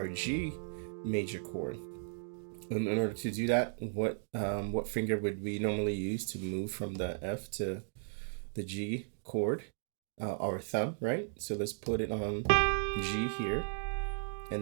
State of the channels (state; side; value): silent; left; digital silence